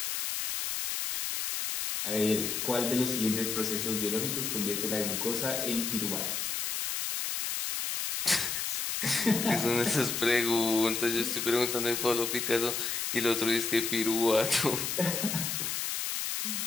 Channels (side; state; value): left; noise; hiss, 1 dB below the sound